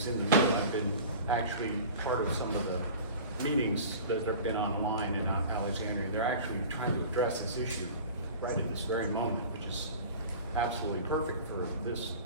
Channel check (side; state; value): both; inverted; correlation -0.39